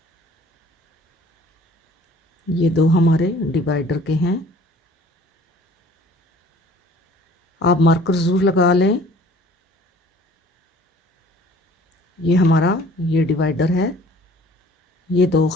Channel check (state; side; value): normal; both; correlation 0.51